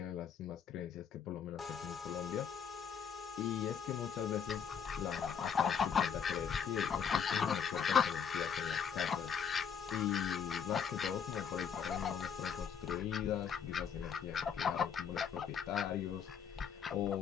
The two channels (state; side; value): quieter; right; 7.3 dB